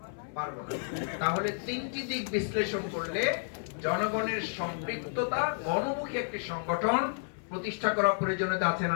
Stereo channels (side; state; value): right; silent; 57 dB below the other